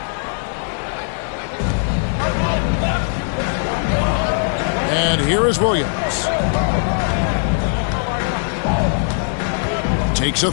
And here is Williams. Takes a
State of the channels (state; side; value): silent; right; digital silence